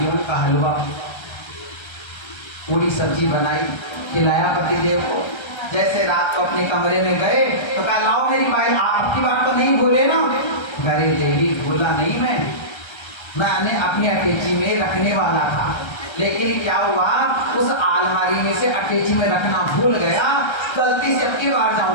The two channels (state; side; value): late; right; 1.3 ms